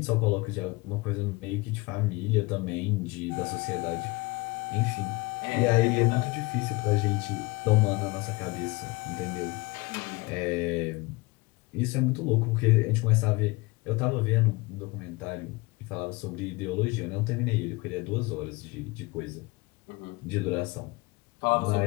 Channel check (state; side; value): quieter; right; 23.9 dB